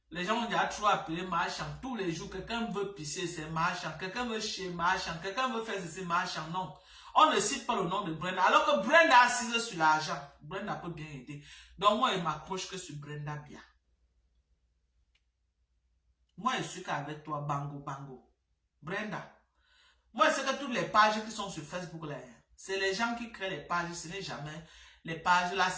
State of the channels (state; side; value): identical; both; correlation 1.00